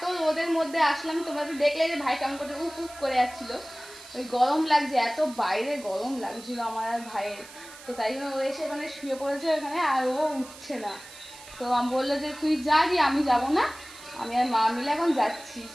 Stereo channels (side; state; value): right; noise; hiss, 18 dB below the sound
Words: রোদের মধ্যে আসলাম, তোমরা তো দেখলে যে ভাই কেমন করে উফ উফ করে যাচ্ছিলো, ওই গরম লাগছে, এত বাইরে গরম লাগছিল আমার আর ভাইয়ের। তো তাই জন্য ও এসে ওখানে শুয়ে পড়েছে ওখানে, আর ও উঠছে না। তো আমি বললো যে তুই যা, দিয়ে আমি যাবো না, আমি আর মা মিলে এখন যাচ্ছি।